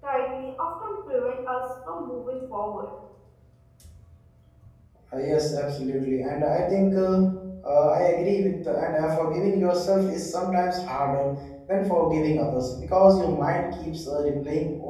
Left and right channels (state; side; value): identical; both; correlation 1.00